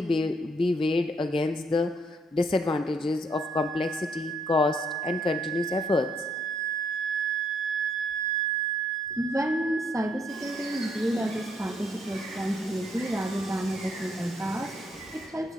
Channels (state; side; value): normal; both; correlation 0.72